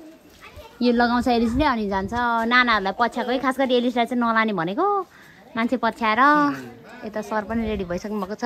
यो लगाउँछ एलिसले अनि जान्छ। नानाहरूलाई पछ्याएको है, खास गरी एलिसलाई चाहिँ नलाने भनेको। मान्छे पछ्याएर यता सर पनि रेडी भइसक्नु भएको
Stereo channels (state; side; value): identical; both; correlation 1.00